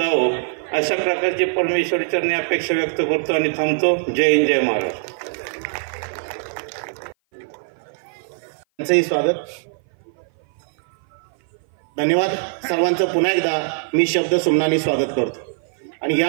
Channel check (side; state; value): left; silent; 57 dB below the other